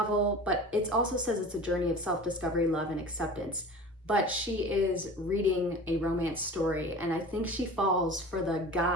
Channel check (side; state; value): both; normal; correlation 0.38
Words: but it also says it's a journey of self-discovery, love, and acceptance. But she is reading a romance story, and I think she falls for the